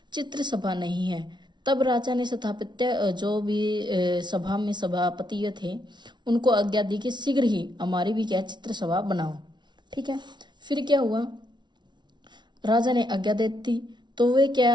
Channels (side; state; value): left; late; 0.21 ms